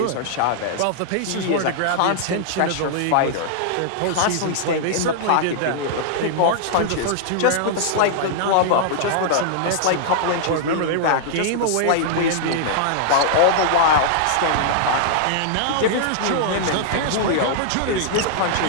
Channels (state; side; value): different; both; correlation -0.01